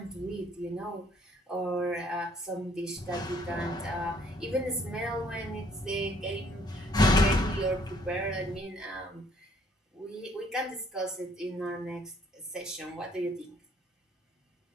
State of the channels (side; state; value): both; normal; correlation 0.63